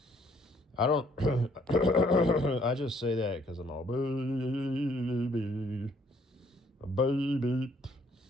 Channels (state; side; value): normal; both; correlation 0.65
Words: I don't. I just say that because I'm all baby, baby.